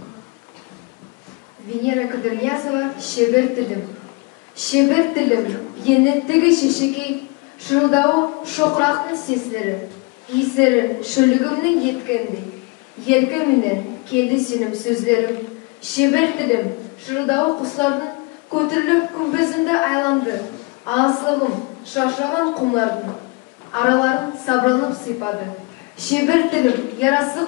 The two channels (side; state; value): right; quieter; 28.5 dB